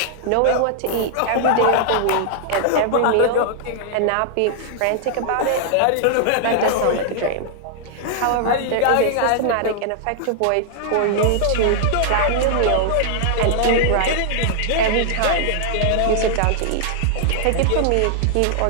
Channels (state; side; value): different; both; correlation -0.01